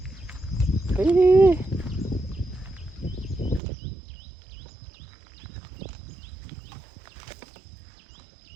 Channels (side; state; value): left; drops out; at 3.6 s